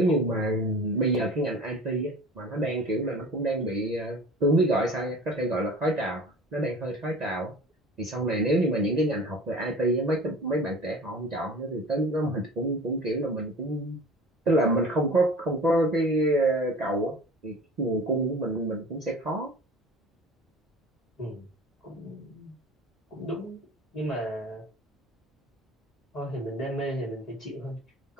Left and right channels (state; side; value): normal; both; correlation 0.41